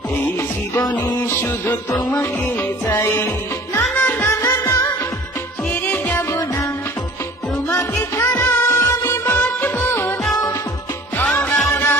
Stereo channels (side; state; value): both; normal; correlation 0.47